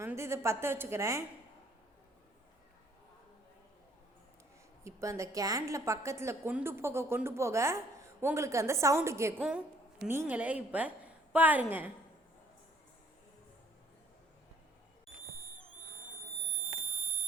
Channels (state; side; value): normal; both; correlation 0.61